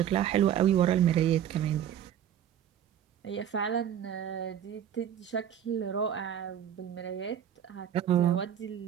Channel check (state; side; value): quieter; left; 9.8 dB